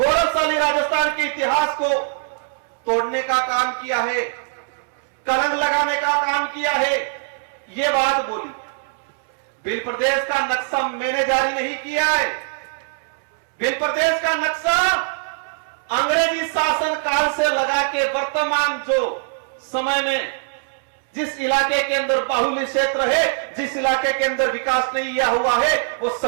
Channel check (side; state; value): left; silent; 64 dB below the other